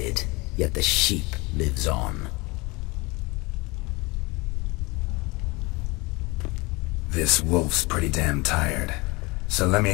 yet the sheep lives on. This wolf's pretty damn tired. So let me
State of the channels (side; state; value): right; quieter; 24.9 dB